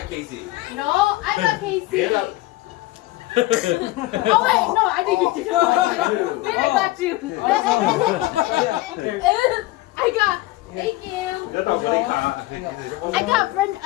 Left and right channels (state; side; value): quieter; right; 18.3 dB